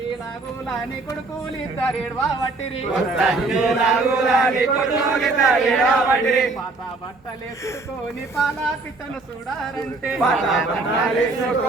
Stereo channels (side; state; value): left; quieter; 3.5 dB